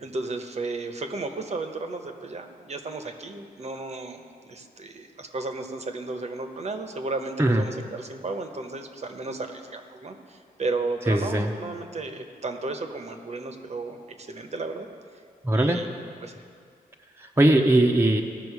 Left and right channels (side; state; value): both; normal; correlation 0.81